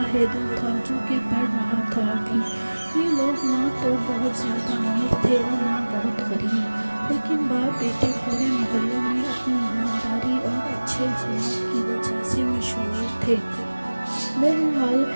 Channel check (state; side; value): inverted; both; correlation -1.00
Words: हैदर था जो कि पढ़ रहा था अभी। ये लोग ना तो बहुत ज़्यादा अमीर थे और ना बहुत गरीब, लेकिन बाप बेटे पूरे मोहल्ले में अपनी ईमानदारी और अच्छे अखलाक की वजह से मशहूर थे। बहरहाल